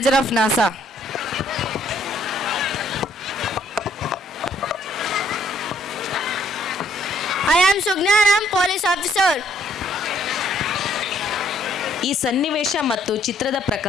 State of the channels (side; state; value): both; normal; correlation 0.66